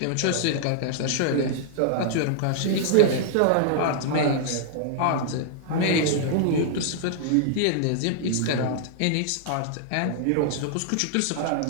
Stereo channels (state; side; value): different; both; correlation -0.01